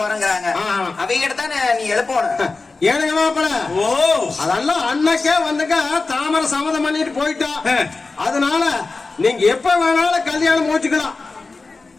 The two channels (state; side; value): quieter; right; 3.8 dB